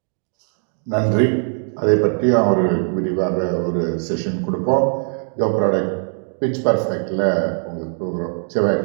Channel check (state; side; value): silent; left; digital silence